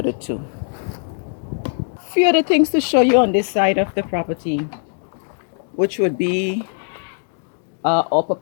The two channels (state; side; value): silent; right; digital silence